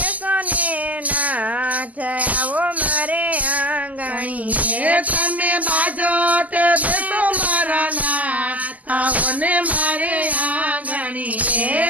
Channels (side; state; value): left; late; 0.077 ms